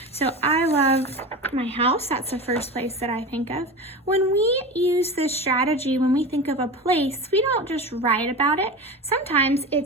So I love my house. That's the first place that I think of. When we use this strategy, when we think of a place, we don't just write about it. Sometimes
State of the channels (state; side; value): normal; both; correlation 0.28